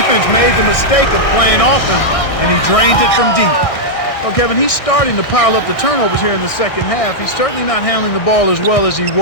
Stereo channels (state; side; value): late; right; 1.6 ms